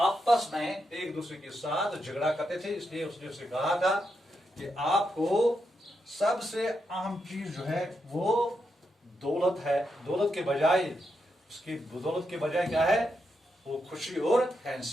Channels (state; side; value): normal; both; correlation 0.84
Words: में एक दूसरे के साथ झगड़ा करते थे, इसलिए उसने उसे कहा था कि आपको सबसे अहम चीज जो है वो दौलत है। दौलत के बजाय क्या है? वो खुशी और